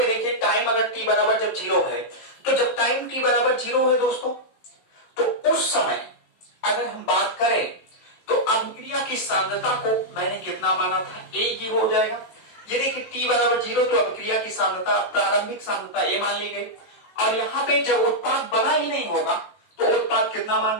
देखिए टाइम अगर टी बराबर जब 0 है, तो जब टाइम टी बराबर 0 है दोस्तों, तो उस समय अगर हम बात करें तो अभिक्रिया की सांद्रता को मैंने कितना माना था, ए हो जाएगा। ये देखिए t बराबर 0, तो अभिक्रिया की सांद्रता, प्रारंभिक सांद्रता ए मान ली गई। और यहाँ पे जब उत्पाद बना ही नहीं होगा तो उत्पाद कितना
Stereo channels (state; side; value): late; right; 18 ms